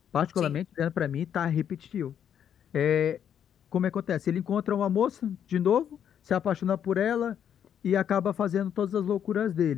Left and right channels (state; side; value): quieter; right; 9.0 dB